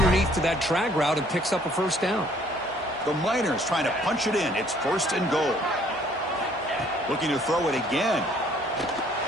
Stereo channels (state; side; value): normal; both; correlation 0.60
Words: to that drag route and picks up a first down. The Miners trying to punch it in. It's first and goal. Looking to throw it again.